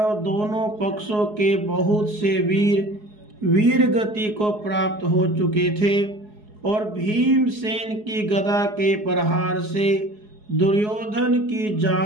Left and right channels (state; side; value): late; left; 4.8 ms